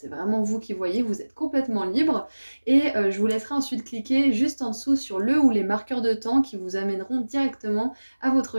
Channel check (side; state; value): both; inverted; correlation -1.00